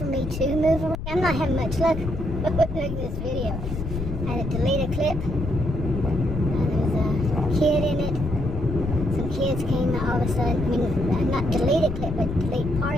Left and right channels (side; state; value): left; noise; rumble, 7 dB below the sound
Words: me to move around? I'm not having much luck with this video. I had to delete a clip. There was a kid in it. Some kids came all of a sudden. I mean, not delete a clip, but delete